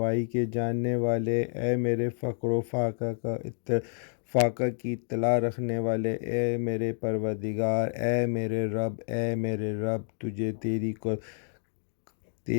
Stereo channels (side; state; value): right; silent; digital silence